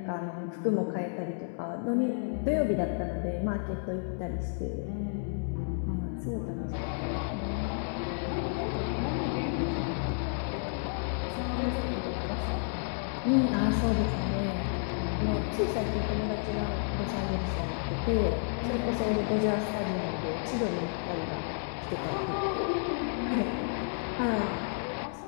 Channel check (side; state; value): right; silent; digital silence